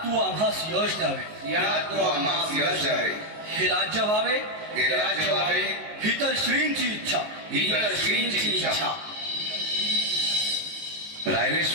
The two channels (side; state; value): left; late; 19 ms